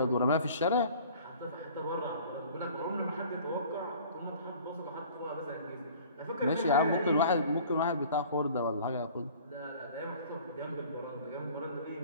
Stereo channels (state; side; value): inverted; both; correlation -0.48